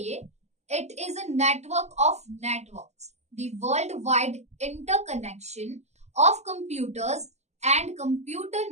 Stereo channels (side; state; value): left; late; 0.33 ms